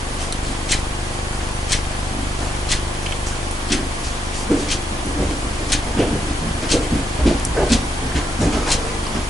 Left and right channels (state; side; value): normal; both; correlation 0.80